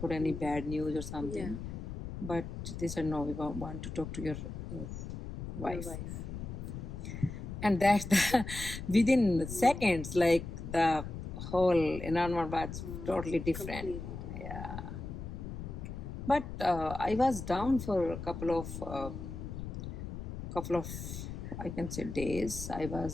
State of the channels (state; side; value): noise; left; rumble, 7 dB below the sound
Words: any bad news or something. But they said, no, we want to talk to your wife. And that's the, within seconds, like the whole environment was totally different. Yeah. But I was down for a couple of, I can say, days. We